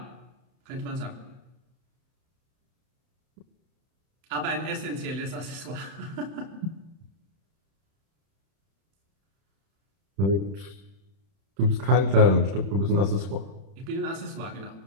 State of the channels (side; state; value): left; late; 31 ms